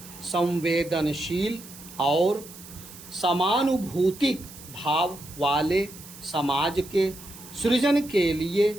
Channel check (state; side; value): noise; right; hiss, 17 dB below the sound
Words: संवेदनशील और समानुभूतिक भाव वाले समाज के सृजन के लिए